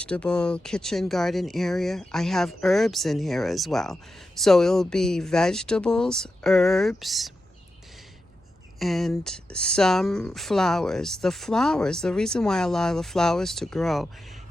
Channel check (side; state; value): both; normal; correlation 0.90